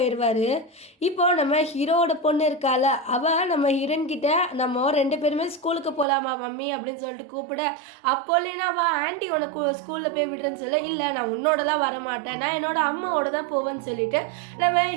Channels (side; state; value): left; drops out; at 6.1 s